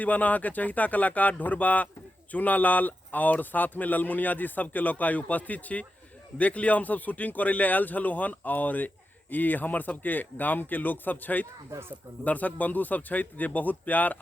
के चहिता कलाकार ढोरबा चूनालाल और साथ में ललमुनिया जी सबके लोकाई उपस्थित छी। देख लिया हम सब शूटिंग करे ले आयल छलु हन और ई हमर सबके गाम के लोग सब छथि, दर्शक बंधु सब छथि जे बहुत प्यार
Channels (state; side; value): normal; both; correlation 0.89